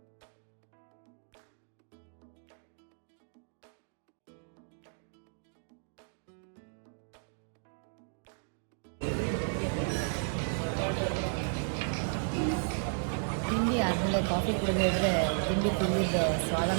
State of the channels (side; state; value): left; silent; digital silence